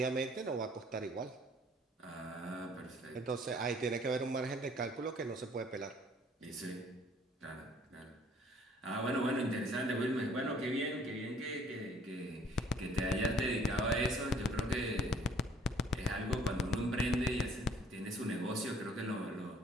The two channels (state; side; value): normal; both; correlation 0.58